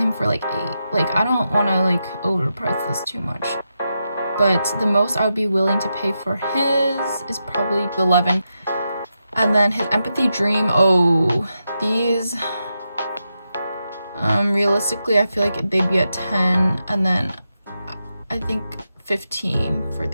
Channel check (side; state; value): both; inverted; correlation -0.87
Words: for like 8. Like, I don't want to like overprice this too much, but the most I would be willing to pay for his is probably 11. And then his empathy dream, oh, these, realistically I feel like they'd be at 10, and then I think 15 for